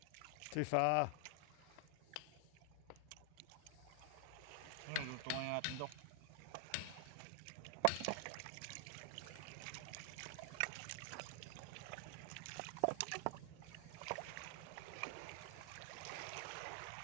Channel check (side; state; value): both; different; correlation 0.00